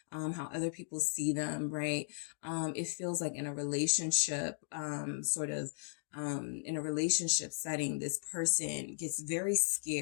how other people see them, right? It feels like in a relationship, in a relationship setting, this person gets very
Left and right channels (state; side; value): silent; right; digital silence